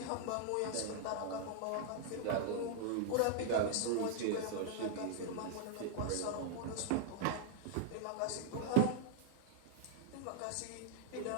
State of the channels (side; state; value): both; different; correlation -0.01